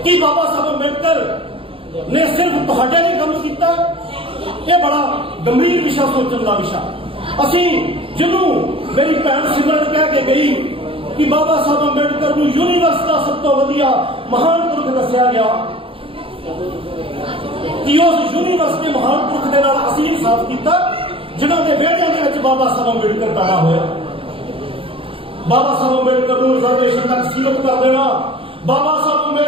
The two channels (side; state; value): left; late; 0.26 ms